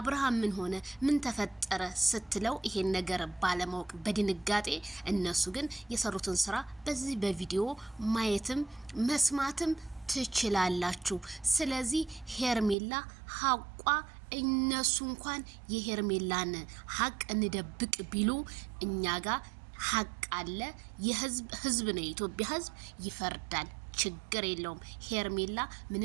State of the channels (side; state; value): left; drops out; at 12.8 s